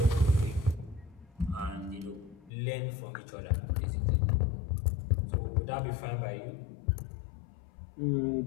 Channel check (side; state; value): right; drops out; at 2.5 s